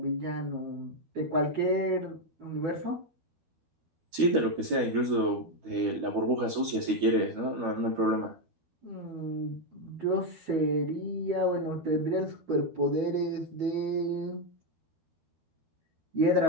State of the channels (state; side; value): late; left; 12 ms